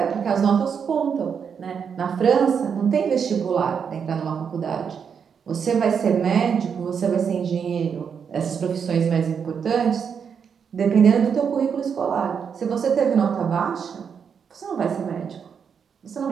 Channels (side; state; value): left; quieter; 6.9 dB